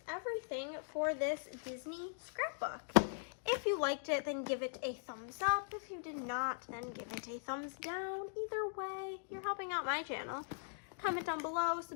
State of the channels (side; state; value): right; silent; digital silence